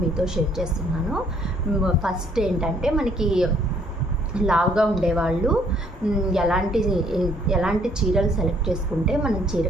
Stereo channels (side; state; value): both; normal; correlation 0.64